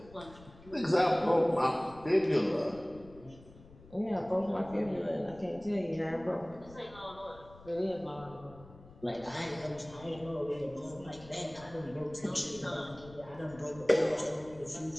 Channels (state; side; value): noise; left; rumble, 20 dB below the sound